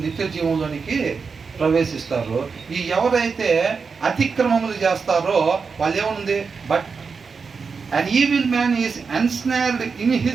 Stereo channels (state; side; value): quieter; left; 5.2 dB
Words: నిత్య జీవంలోనికి ప్రవేశిస్తారు. ఈ ఎవరైతే అతిక్రమములు చేస్తారో వాళ్ళు ఏముంది, but an evil man is ensnared in